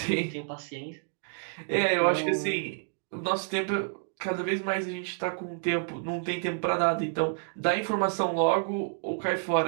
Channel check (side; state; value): left; silent; digital silence